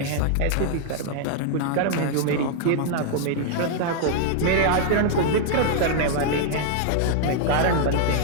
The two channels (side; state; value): both; different; correlation 0.00